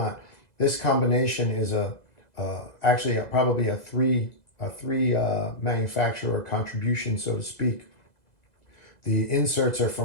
This combination is actually probably a three manufacturer contribution, so to speak. The inserts are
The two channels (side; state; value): right; late; 2.0 ms